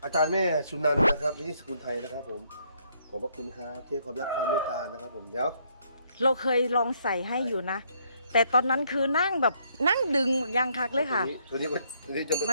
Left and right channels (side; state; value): both; inverted; correlation -0.70